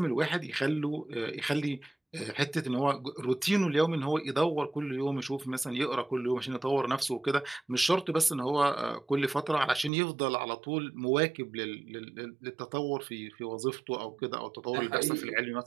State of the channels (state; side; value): drops out; left; at 9.9 s